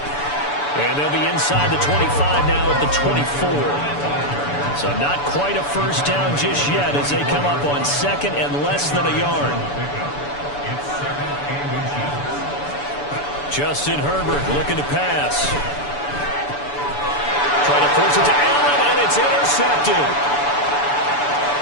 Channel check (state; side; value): late; right; 6.9 ms